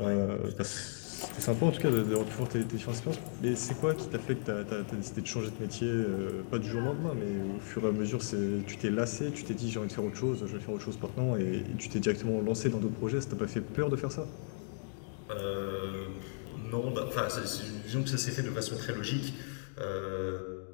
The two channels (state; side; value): silent; right; digital silence